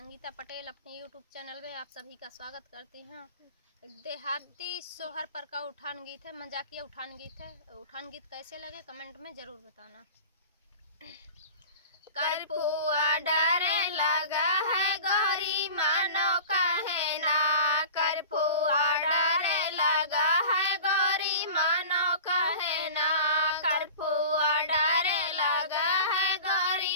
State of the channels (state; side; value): inverted; both; correlation -0.37